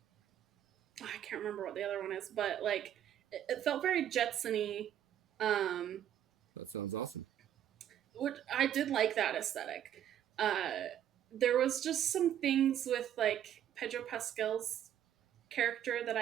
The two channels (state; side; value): quieter; left; 10.6 dB